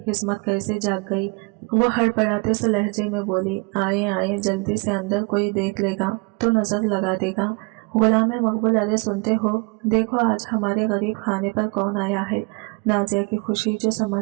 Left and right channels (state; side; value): quieter; left; 30.3 dB